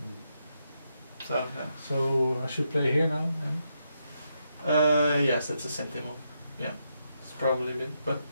So, yeah. So I should play here now? Yes, that's a sentinel. Yeah, it's probably a bit. But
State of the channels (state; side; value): inverted; both; correlation -0.82